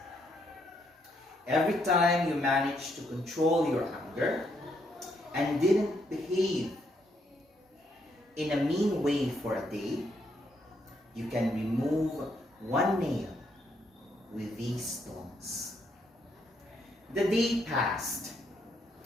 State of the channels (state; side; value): normal; both; correlation 0.74